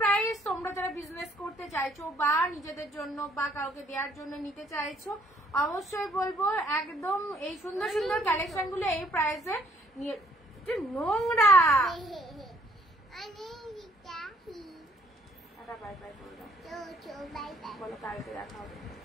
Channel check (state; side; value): normal; both; correlation 0.64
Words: প্রাইস। তোমরা যারা বিজনেস করতে চাইছো বা নিজেদের জন্য বা কাউকে দেওয়ার জন্য নিতে চাইছো, অবশ্যই বলবো একদম এই সুন্দর সুন্দর কালেকশন গুলো এই প্রাইসে নিয়ে। নোংরা বাই বাই বলো, কালকে দেখা হবে।